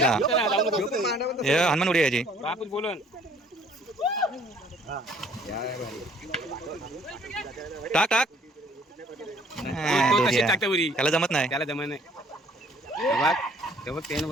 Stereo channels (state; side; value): normal; both; correlation 0.58